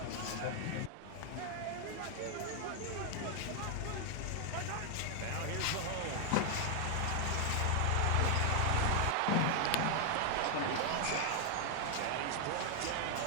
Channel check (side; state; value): both; different; correlation 0.00